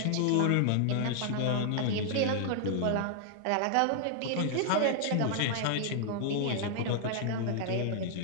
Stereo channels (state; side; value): different; both; correlation -0.01